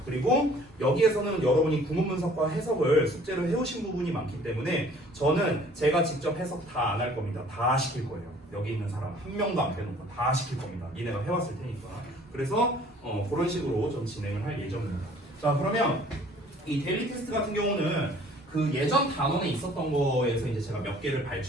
그리고 여기에서는 여러분이 구문 분석과 해석을 숙제로 해오신 부분이 많기 때문에 저는 제가 직접 해석 다 안 할 겁니다. 다 시킬 거예요. 여기 있는 사람 한 명도 안 빼놓고 다 시킬 겁니다. 니네가 해왔을 테니까. 그래서 그런 식으로 좀 진행을 할 예정입니다. 자, 그러면 이 데일리 테스트 같은 경우는 그 예전 단원에 있었던 거에서 이제 제가 몇 개를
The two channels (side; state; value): both; normal; correlation 0.54